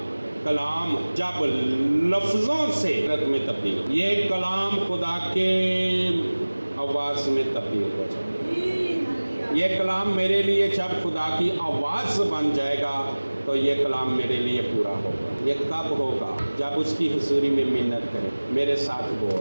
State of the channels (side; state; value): both; inverted; correlation -1.00